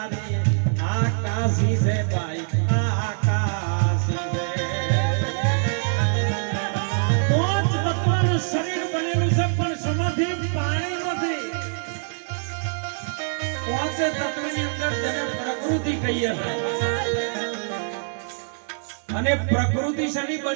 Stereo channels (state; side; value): silent; left; 62 dB below the other